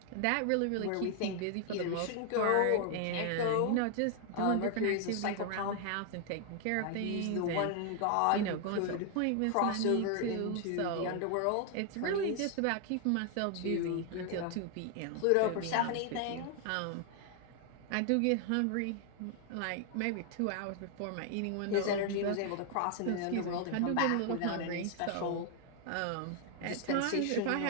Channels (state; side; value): different; both; correlation 0.00